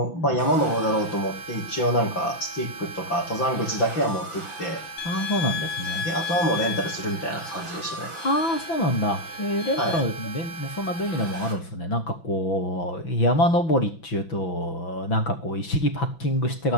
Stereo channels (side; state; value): right; late; 6.0 ms